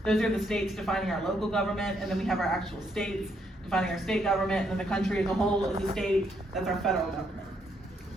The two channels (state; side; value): normal; both; correlation 0.74